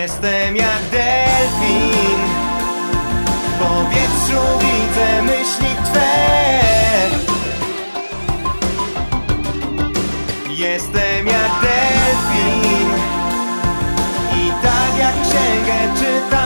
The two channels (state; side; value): inverted; both; correlation -1.00